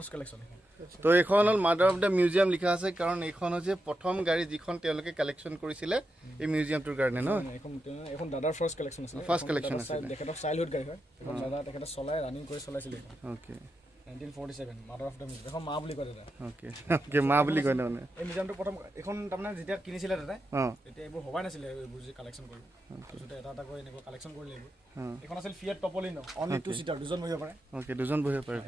কালেকশ্যন তো এইখন হ'ল মাদাৰ অফ দ্য মিউজিয়াম লিখা আছে কাৰণ এইখন হৈছে প্ৰথম গাড়ী যিখন তেওঁলোকে কালেকশ্যন কৰিছিলে এই মিউজিয়ামটোৰ কাৰণে ন এখন দাদাৰ ফাৰ্ষ্ট কালেকশ্যন আছে First collection আছিলে। তেখেতৰ চাইল্ডহুড গাড়ী হয় এখন দাদা তেখেতে চলাই ৰানিং কৰি চলাইছিলে okay 1947 mother of the museum এখন মা বুলি কয় দাদা অ'কে অ'কে মা বুলি কয় মানে এই মিউজিয়ামটো প্ৰথম এখন তাৰমানে যেতিয়া কিনিছিলে দাদাই অঁ তেতিয়া এইবোৰ ভবাই নাছিলে এইবোৰ যে কালেকশ্যন কৰিব তাৰপিছতে এটা এটা কৰি এনেকুৱা কালেকশ্যন কৰিলে এইবোৰ অঁ এইখন আছিল ফিয়েট টপলিনো অনলি 2 সিটাৰ দুজন বহিব পাৰে অ'কে দুজন বহিব পাৰে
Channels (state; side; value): normal; both; correlation 0.87